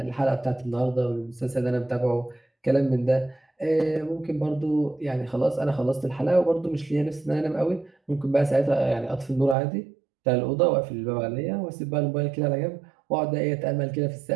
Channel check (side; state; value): left; drops out; at 9.6 s